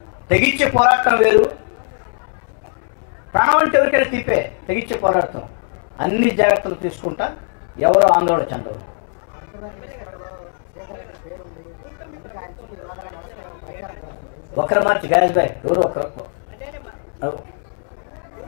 తెగించే పోరాటం వేరు, ప్రాణం అంటే ఎవరికైనా తీపే. తెగించే పోరాటం అన్ని జాగ్రత్తలు తీసుకుంటా. ఎవరో ఆందోళన చెందరు. ఒకరు మార్చి గాయస్ బాయ్ ఎవరు ఒకరు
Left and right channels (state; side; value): silent; right; digital silence